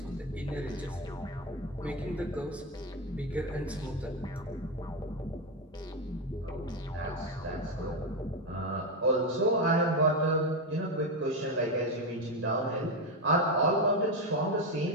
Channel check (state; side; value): normal; both; correlation 0.11